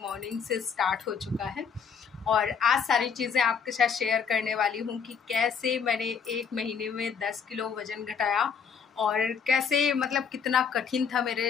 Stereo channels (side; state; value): right; quieter; 6.5 dB